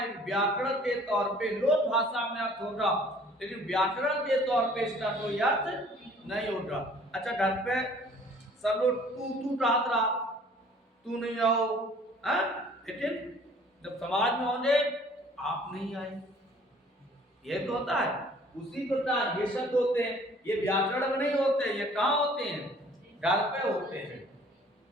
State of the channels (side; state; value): both; normal; correlation 0.54